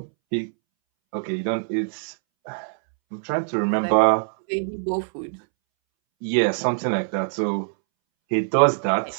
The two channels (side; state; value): left; silent; 63 dB below the other